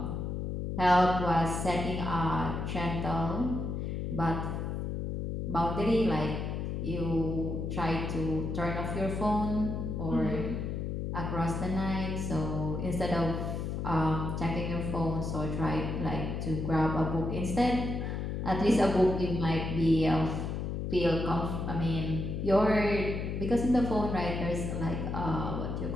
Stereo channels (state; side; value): noise; left; hum, 3 dB below the sound